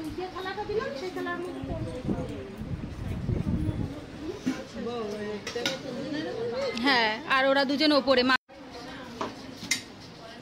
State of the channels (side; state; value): both; identical; correlation 1.00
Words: হ্যাঁ, আর ওরা দুজন ওপরে।